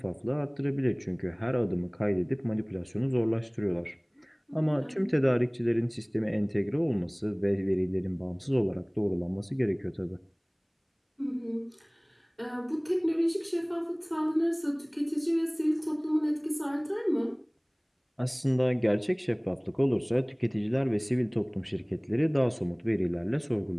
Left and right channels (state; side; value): identical; both; correlation 1.00